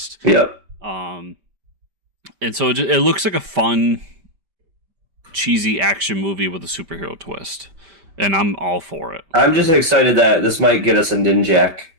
Yep. And so it looks like a fun, cheesy action movie with a superhero twist. And I'm all for it. I'm just excited that this might get us a Ninjak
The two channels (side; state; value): left; late; 5.1 ms